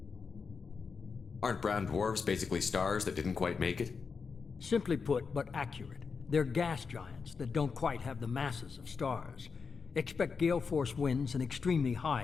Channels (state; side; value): quieter; right; 5.3 dB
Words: Aren't brown dwarfs basically stars that didn't quite make it? Simply put, but accurate. They're gas giants that don't quite have the masses of stars. Expect gale force winds and extremely